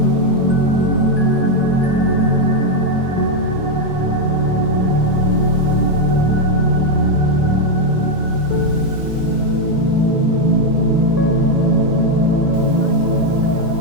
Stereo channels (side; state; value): left; late; 4.1 ms